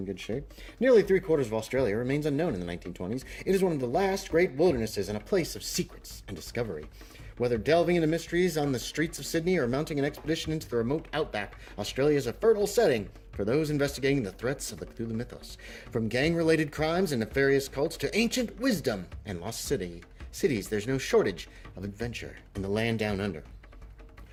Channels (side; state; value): both; identical; correlation 1.00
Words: good shape. Nearly 3/4 of Australia remains unknown in the 1920s. It is one of the last great wildernesses and a place of secrets and discovery. Whether delving into mysteries on the streets of Sydney or mounting an expedition into the remote outback, Australia is a fertile setting for those investigating the threats of the Cthulhu mythos. From gang-related crimes and nefarious cults to ancient wisdom and lost cities, there's no shortage of adventure in the Land Down Under.